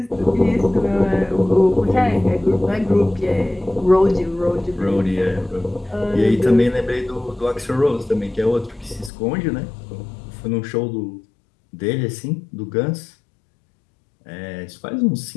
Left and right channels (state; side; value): drops out; right; at 9.1 s